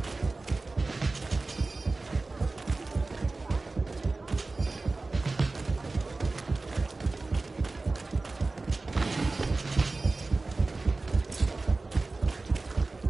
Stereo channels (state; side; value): quieter; left; 3.5 dB